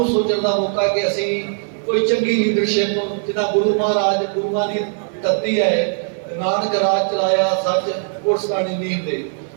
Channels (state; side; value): silent; left; 66 dB below the other